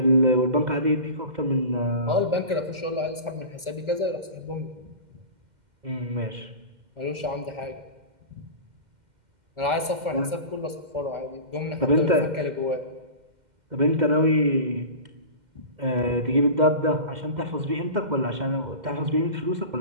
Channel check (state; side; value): late; left; 2.1 ms